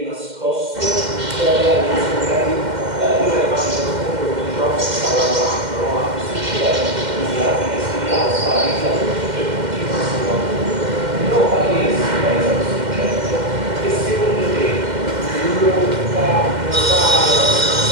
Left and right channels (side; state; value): left; late; 2.1 ms